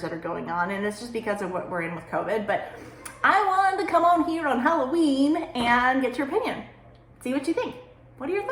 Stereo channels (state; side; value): identical; both; correlation 1.00